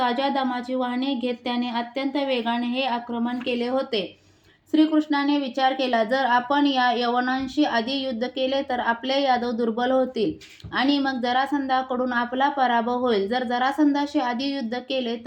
दमाची वाहने घेत त्याने अत्यंत वेगाने हे आक्रमण केले होते. श्रीकृष्णाने विचार केला, जर आपण या यवनांशी आधी युद्ध केले तर आपले यादव दुर्बल होतील आणि मग जरासंधाकडून आपला पराभव होईल. जर जरासंधाशी आधी युद्ध केले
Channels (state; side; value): identical; both; correlation 1.00